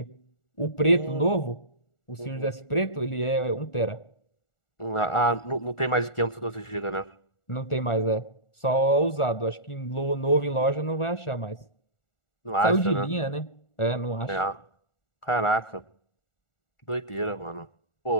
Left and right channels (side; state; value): right; late; 1.4 ms